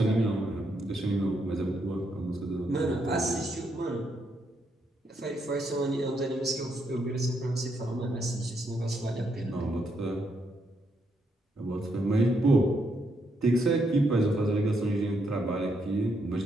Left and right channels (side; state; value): both; normal; correlation 0.77